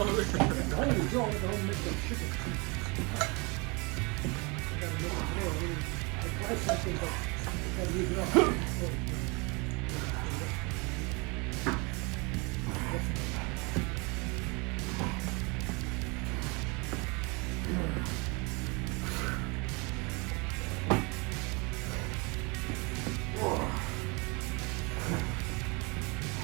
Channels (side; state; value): left; quieter; 28.9 dB